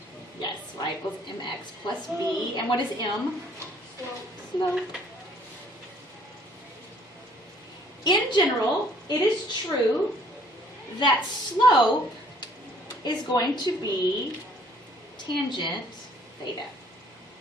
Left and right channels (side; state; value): both; normal; correlation 0.59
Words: yes, y equals mx plus b. And what is m? Slope. In general, it is true that slope is going to be tangent theta.